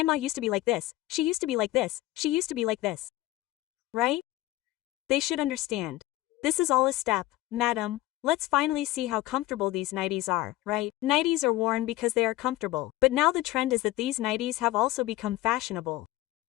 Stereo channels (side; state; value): right; quieter; 17.0 dB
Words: used to be like this, she used to be like this, she used to be like this. Right? They should understand. This is all a step, madam. Let's finally see how comfortable these nighties are, right? Nighties are worn because they are comfortable, but now the trend is that these nighties have also become fashionable.